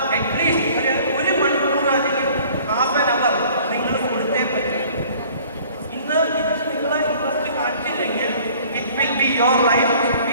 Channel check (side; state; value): both; inverted; correlation -0.52